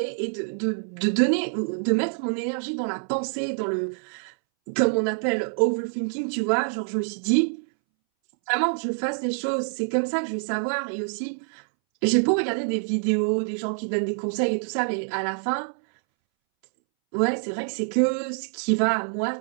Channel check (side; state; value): left; silent; 61 dB below the other